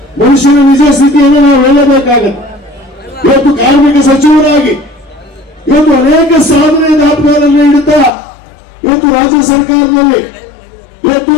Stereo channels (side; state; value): right; drops out; at 8.1 s